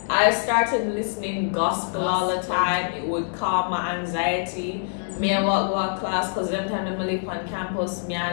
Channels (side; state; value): right; silent; digital silence